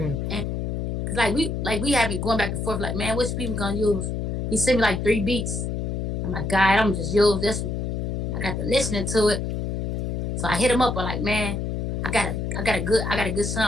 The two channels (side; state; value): left; noise; hum, 2 dB below the sound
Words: and cause like we have been going back and forth. Like, man, which beat we gonna use? He sent me like 3 beats. I'm like, God, I'm just use this one. I got to listening to it, so I hit him up. I'm like, man, I got a good